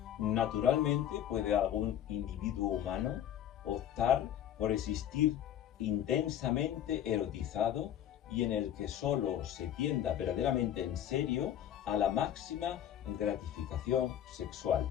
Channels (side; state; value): right; quieter; 10.7 dB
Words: Naturalmente puede algún individuo humano optar por existir intensamente erotizado y en el que solo se tienda verdaderamente en serio a la máxima gratificación